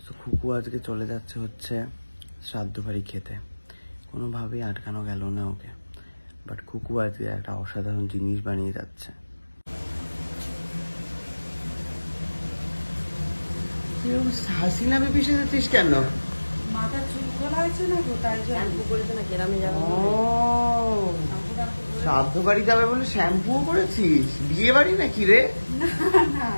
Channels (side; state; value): both; inverted; correlation -1.00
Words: তো খুকু আজকে চলে যাচ্ছে হচ্ছে শ্রাদ্ধ বাড়ি খেতে, কোনোভাবেই আটকানো গেল না ওকে। বাট খুকু আজকে একটা অসাধারণ জিনিস বানিয়ে যাচ্ছে। হাসিনা বেবি সেজেছিস কেন? মাথা চুল খোলা হয়েছে না তো, তাই শ্যাম্পু করেছে না, গ্রামে যাবে। শ্রাদ্ধ বাড়ি যাবে বলে শ্যাম্পুও করেছিস? বিয়ে বাড়ি নাকি রে? না না,